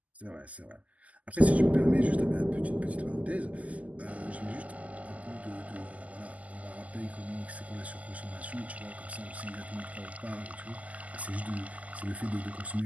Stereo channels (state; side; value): late; left; 0.073 ms